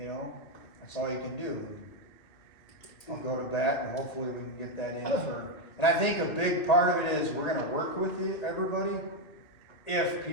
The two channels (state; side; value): late; right; 2.6 ms